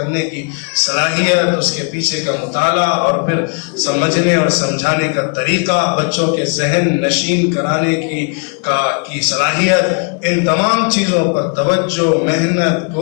کی صلاحیت، اس کے پیچھے کا مطالعہ اور پھر سمجھنے اور سمجھانے کا طریقہ، بچوں کے ذہن نشین کرانے کی صلاحیت، ان تمام چیزوں پر توجہ، محنت،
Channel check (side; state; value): right; quieter; 36.5 dB